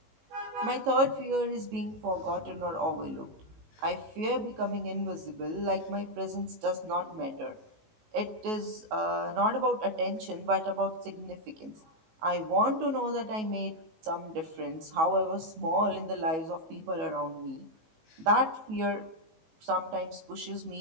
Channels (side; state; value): left; late; 19 ms